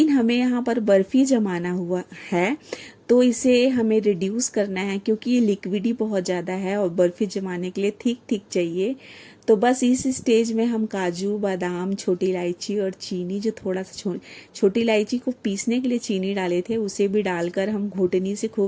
हमें यहाँ पर बर्फी जमाना हुआ है, तो इसे हमें रिड्यूस करना है, क्योंकि ये लिक्विडी बहुत ज़्यादा है और बर्फी जमाने के लिए ठीक चाहिए। तो बस इस स्टेज में हम काजू बादाम छोटी इलायची और चीनी, जो थोड़ा सा छोटी इलायची को पीसने के लिए चीनी डाले थे, उसे भी डालकर हम घोटनी से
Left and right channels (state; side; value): identical; both; correlation 1.00